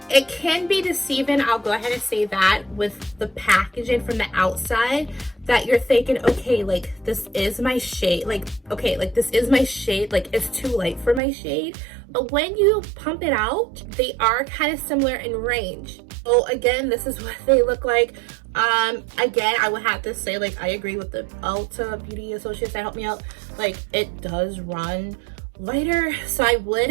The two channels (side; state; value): left; drops out; at 11.2 s